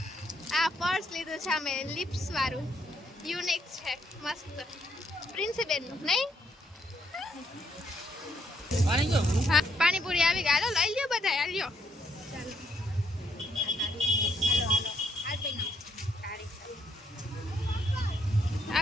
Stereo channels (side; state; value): both; normal; correlation 0.73